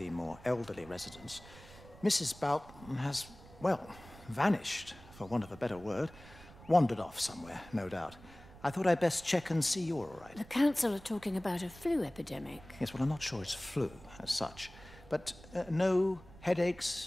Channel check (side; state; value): right; noise; rumble, 20 dB below the sound